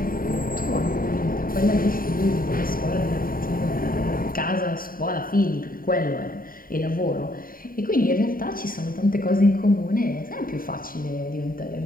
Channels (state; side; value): late; right; 0.41 ms